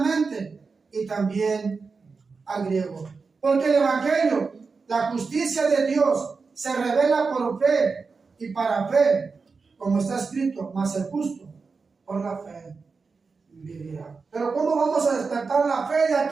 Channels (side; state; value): left; quieter; 4.7 dB